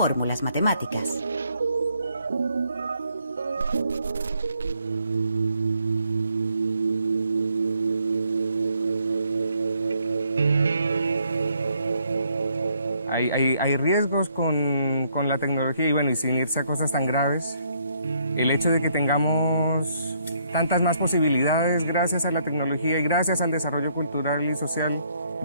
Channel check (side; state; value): both; inverted; correlation -0.70